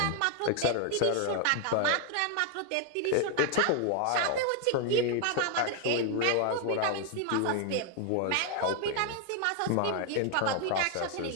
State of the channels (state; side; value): different; both; correlation 0.00